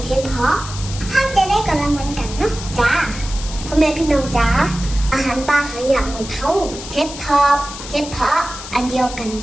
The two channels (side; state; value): left; noise; hiss, 11 dB below the sound